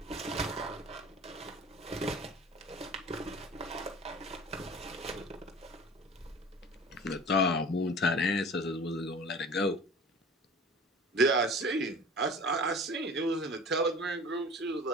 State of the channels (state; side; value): normal; both; correlation 0.42